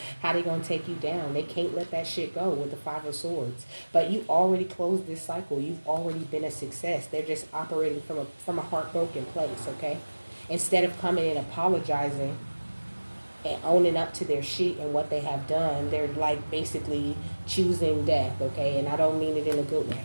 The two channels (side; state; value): both; inverted; correlation -1.00